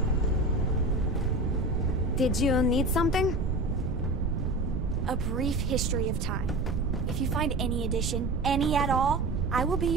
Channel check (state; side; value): noise; right; rumble, 2 dB below the sound